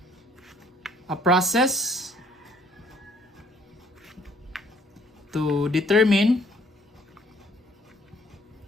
a process to determine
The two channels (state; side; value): normal; both; correlation 0.62